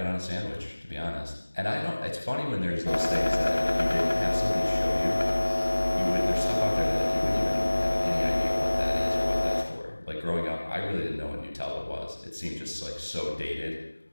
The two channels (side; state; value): both; inverted; correlation -1.00